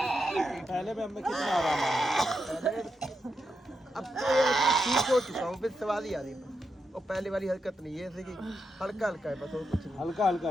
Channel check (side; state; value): both; normal; correlation 0.85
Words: पहले भी हमें कितना आराम आया। अब तो ये ठीक हो चुका हूँ, फिर सवाल ही आ रही है। और पहले वाली हरकत नहीं है, जैसे कि हल्का हल्का है बस, और कुछ नहीं। हल्का हल्का